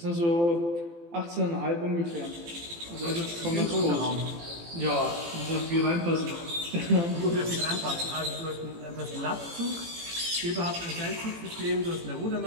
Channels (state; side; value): late; left; 18 ms